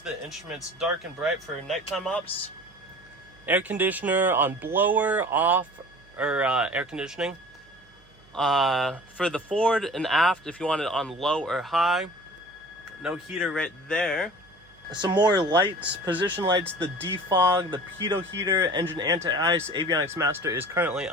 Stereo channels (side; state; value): right; noise; hum, 30 dB below the sound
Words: instruments dark and bright for nighttime ops. Air conditioner on blower, off, or air conditioning. For the forward and aft, if you want it on low or high. No heater right there. Some more lights, position lights, the defog, the pitot heater, engine anti-ice, avionics master is currently